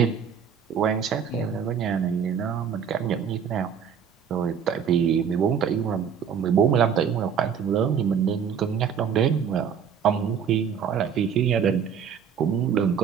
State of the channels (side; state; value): left; quieter; 7.5 dB